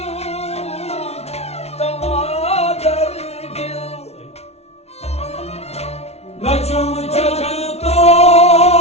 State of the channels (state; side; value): late; right; 0.31 ms